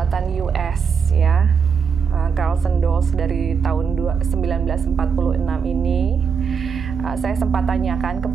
US ya, Carlsen Dolls dari tahun 1946 ini, saya sempat tanyakan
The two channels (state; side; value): quieter; left; 6.2 dB